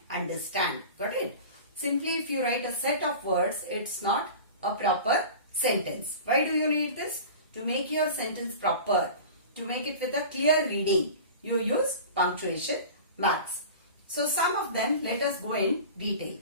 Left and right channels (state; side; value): inverted; both; correlation -0.36